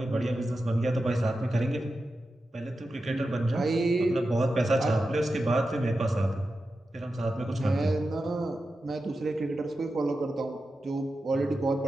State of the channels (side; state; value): both; normal; correlation 0.91